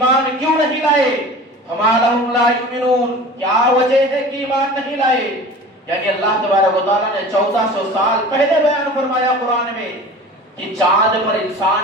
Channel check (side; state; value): both; normal; correlation 0.39